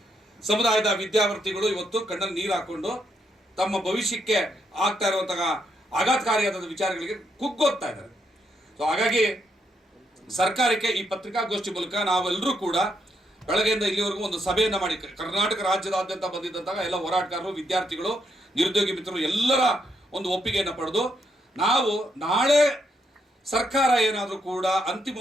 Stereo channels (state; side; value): normal; both; correlation 0.77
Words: ಸಮುದಾಯದ ವಿದ್ಯಾರ್ಥಿಗಳು ಇವತ್ತು ಕಣ್ಣಲ್ಲಿ ನೀರು ಹಾಕೊಂಡು ತಮ್ಮ ಭವಿಷ್ಯಕ್ಕೆ ಆಗ್ತಾ ಇರುವಂತಹ ಆಘಾತಕಾರಿಯಾದ ವಿಚಾರಗಳಿಗೆ ಕುಗ್ಗೋಗ್ತಾ ಇದ್ದಾರೆ. ಸೊ ಹಾಗಾಗಿ ಸರ್ಕಾರಕ್ಕೆ ಈ ಪತ್ರಿಕಾಗೋಷ್ಠಿ ಮೂಲಕ ನಾವೆಲ್ಲರೂ ಕೂಡ ಬೆಳಗ್ಗೆಯಿಂದ ಇಲ್ಲಿವರೆಗೂ ಒಂದು ಸಭೆಯನ್ನು ಮಾಡಿ ಕರ್ನಾಟಕ ರಾಜ್ಯದಾದ್ಯಂತ ಬಂದಿದ್ದಂತಹ ಎಲ್ಲ ಹೋರಾಟಗಾರರು, ವಿದ್ಯಾರ್ಥಿಗಳು, ನಿರುದ್ಯೋಗಿ ಮಿತ್ರರು ಎಲ್ಲರ ಒಂದು ಒಪ್ಪಿಗೆಯನ್ನು ಪಡೆದು ನಾವು ನಾಳೆ ಸರ್ಕಾರ ಏನಾದರೂ ಕೂಡ